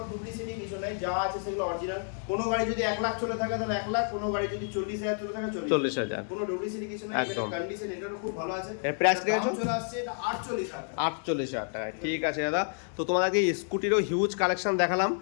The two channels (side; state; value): right; silent; 58 dB below the other